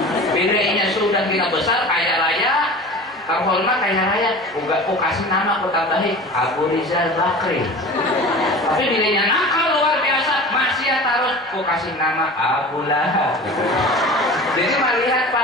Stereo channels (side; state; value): both; normal; correlation 0.37